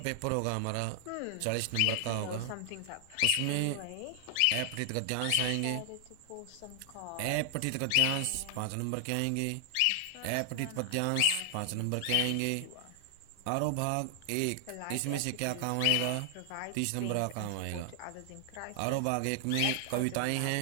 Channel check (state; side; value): different; both; correlation 0.00